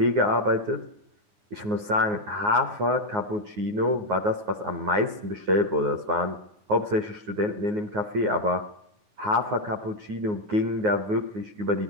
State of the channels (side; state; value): left; late; 9.6 ms